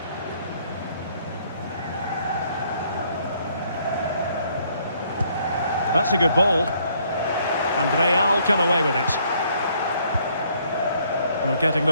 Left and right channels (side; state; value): both; inverted; correlation -0.66